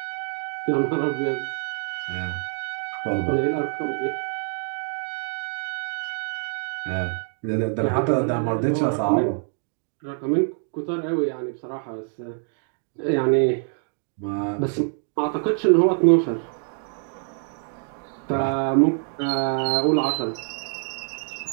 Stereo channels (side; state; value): left; silent; 56 dB below the other